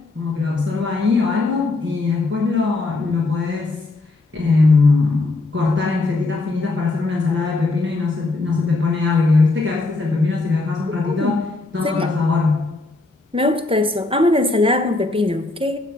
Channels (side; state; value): right; quieter; 3.2 dB